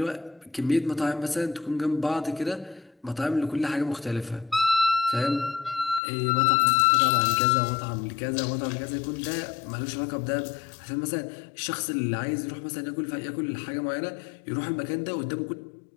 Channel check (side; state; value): right; drops out; at 6.0 s